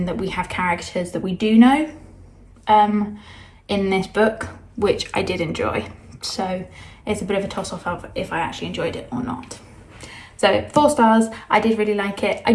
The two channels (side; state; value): both; identical; correlation 1.00